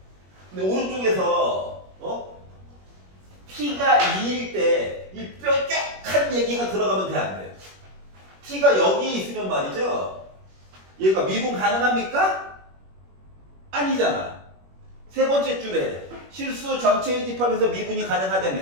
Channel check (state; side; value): late; left; 21 ms